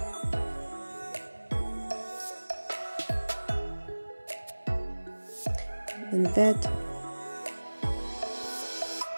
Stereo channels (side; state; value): both; inverted; correlation -1.00